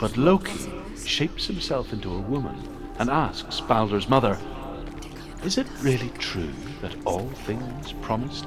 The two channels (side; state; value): both; identical; correlation 1.00